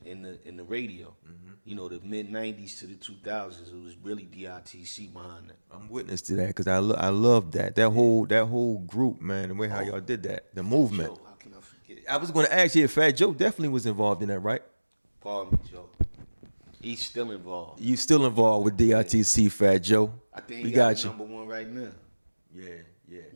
and the radio. Mm-hmm. The mid '90s to the 2000s, it was really D.I.T.C behind that. I'm witness to that because I love that whole group, man. The way how y'all did that, the movement. Joe, how can I forget? I was going to ask you if Fat Joe definitely was involved in that, right? Pardon me, Joe. He's still involved. You still involved with D.I.T.C, Fat Joe? I think we he got got you. #1 right now. Yeah.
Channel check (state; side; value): inverted; both; correlation -1.00